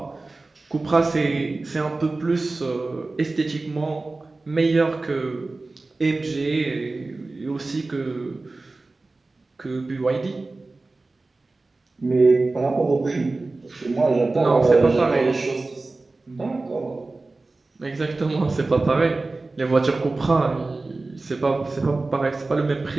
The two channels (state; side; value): quieter; left; 3.4 dB